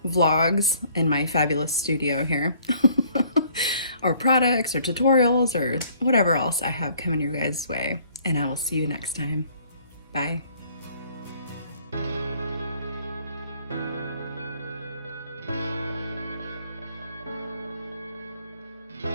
vlogs in my fabulous studio here. Or products or tutorials or whatever else I have coming your guys' way. And I will see you next time. Bye.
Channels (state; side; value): inverted; both; correlation -0.59